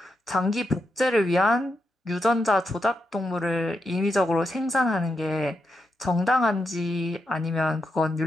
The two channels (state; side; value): normal; both; correlation 0.85